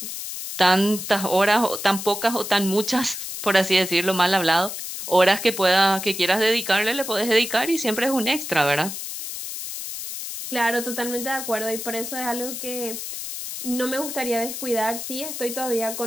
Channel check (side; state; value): left; noise; hiss, 7 dB below the sound